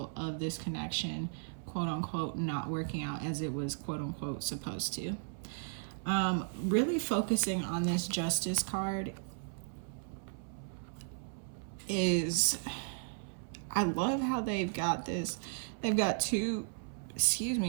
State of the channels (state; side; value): silent; left; 54 dB below the other